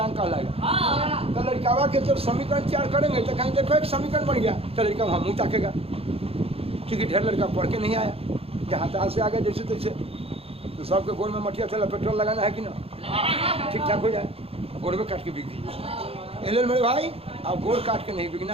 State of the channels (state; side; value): late; left; 0.28 ms